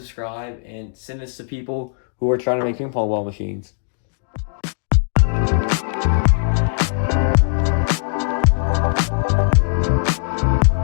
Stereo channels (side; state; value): right; silent; digital silence